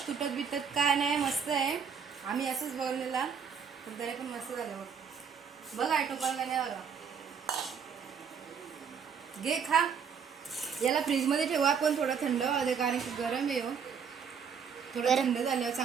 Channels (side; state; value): left; quieter; 6.8 dB